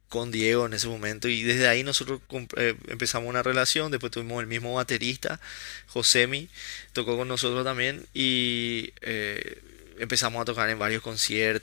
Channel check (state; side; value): silent; right; digital silence